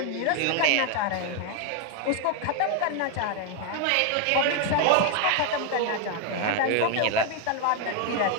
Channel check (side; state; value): both; different; correlation 0.01